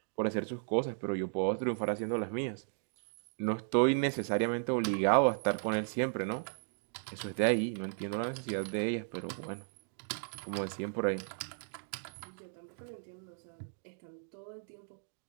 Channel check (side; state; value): left; silent; digital silence